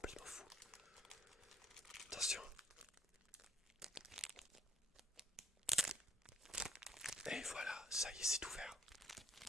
fou. Attention. Et voilà, ça y est, c'est ouvert.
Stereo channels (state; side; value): normal; both; correlation 0.65